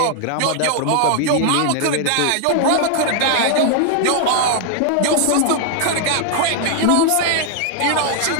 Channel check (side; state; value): both; different; correlation 0.00